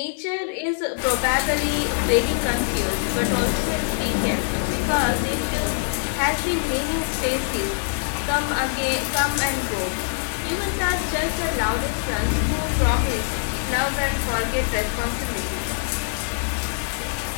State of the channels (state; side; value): silent; right; 61 dB below the other